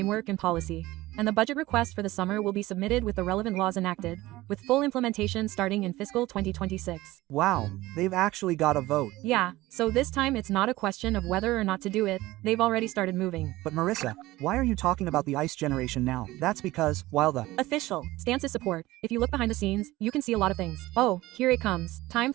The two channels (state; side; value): quieter; left; 18.0 dB